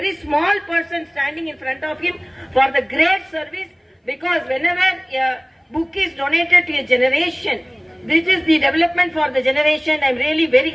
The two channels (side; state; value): both; identical; correlation 1.00